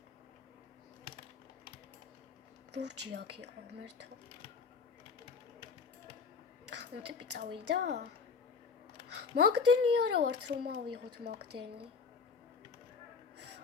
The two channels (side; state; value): right; quieter; 5.2 dB